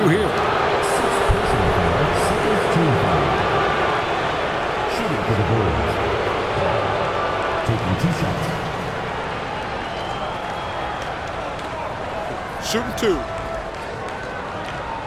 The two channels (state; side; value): identical; both; correlation 1.00